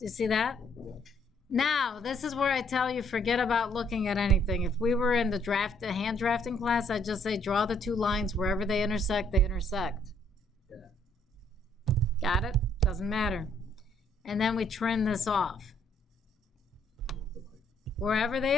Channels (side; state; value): both; normal; correlation 0.67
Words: you see that? Now, this is where I tell you, forget about looking at anything. If we were in the hand drafting class, I'd just say draw the two lines wherever they intersect, they intersect. Yeah. Got it? Doesn't matter. And then we trim this off. Wherever they